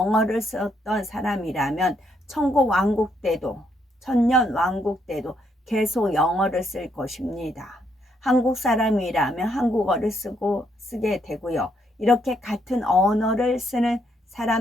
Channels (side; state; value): both; normal; correlation 0.74